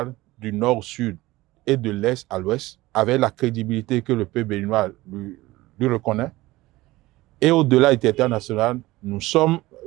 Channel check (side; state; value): left; quieter; 18.8 dB